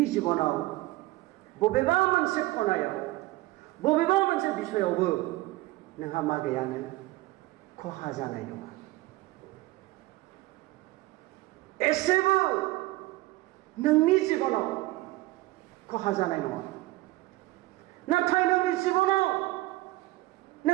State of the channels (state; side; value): quieter; left; 19.0 dB